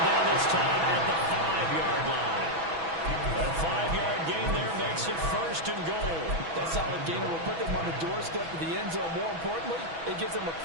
down this time at the 5-yard line. A 5-yard gain there makes it 1st and goal. That solid gainer will put them on the doorstep of the end zone. More importantly, it gives them a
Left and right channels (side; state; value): left; late; 6.1 ms